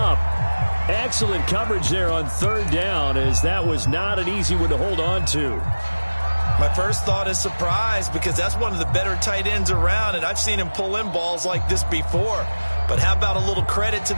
Excellent coverage there on 3rd down, as that was not an easy one to hold on to. My first thought is surprise, because that's one of the better tight ends around, and I've seen him pull in balls like this before. But how about a little credit to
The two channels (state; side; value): inverted; both; correlation -1.00